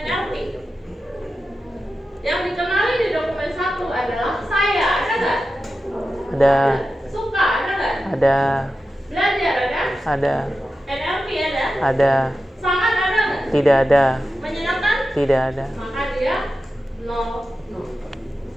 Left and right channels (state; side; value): normal; both; correlation 0.92